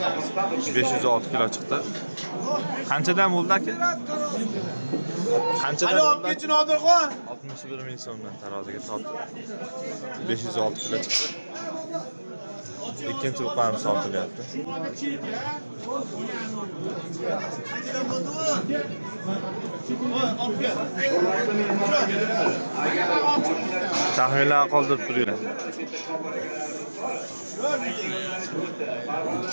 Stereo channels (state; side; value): inverted; both; correlation -1.00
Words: $506 kilo chiqdi. Qanchadan bo'ldi aka? Qanchadan bo'ldi? 61 ming so'mdan taroziga tortdi. 506 kilo chiqdi. Ikkinchi buqamiz sotilyapti. Taxminlar qoldirib turinglar.